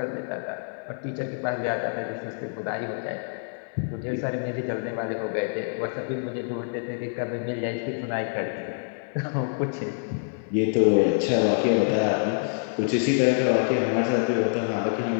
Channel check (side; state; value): right; silent; digital silence